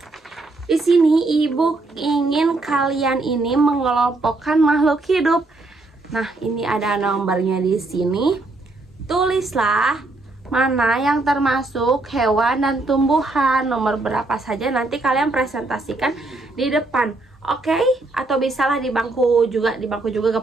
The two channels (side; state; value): left; quieter; 3.1 dB